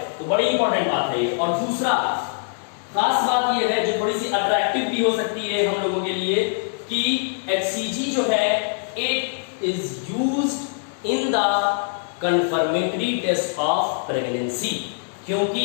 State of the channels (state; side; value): silent; right; 63 dB below the other